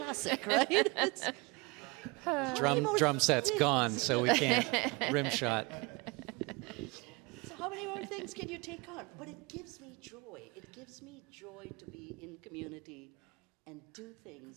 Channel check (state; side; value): quieter; left; 26.8 dB